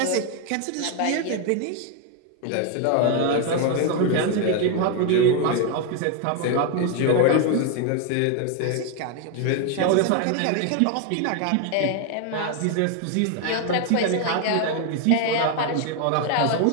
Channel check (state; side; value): different; both; correlation 0.01